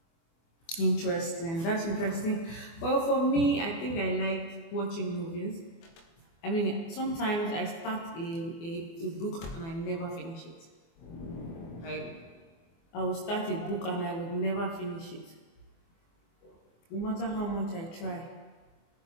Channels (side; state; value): right; late; 24 ms